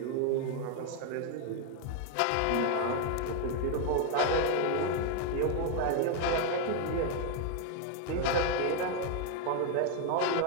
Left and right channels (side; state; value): both; different; correlation 0.01